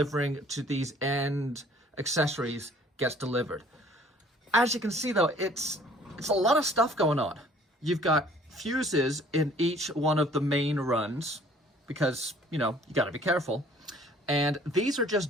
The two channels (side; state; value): both; normal; correlation 0.55